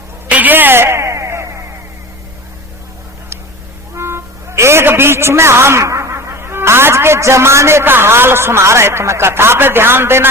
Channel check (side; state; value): left; noise; rumble, 23 dB below the sound